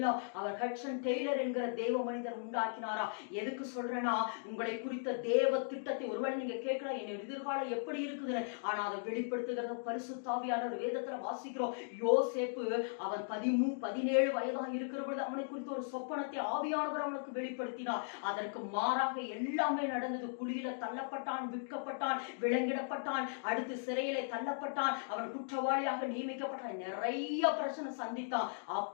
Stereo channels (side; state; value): right; silent; digital silence